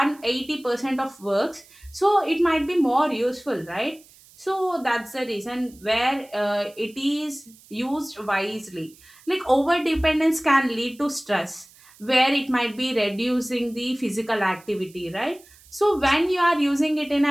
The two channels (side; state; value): right; noise; hiss, 25 dB below the sound